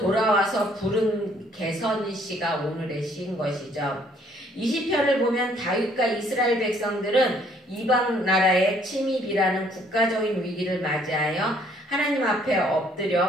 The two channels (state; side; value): normal; both; correlation 0.63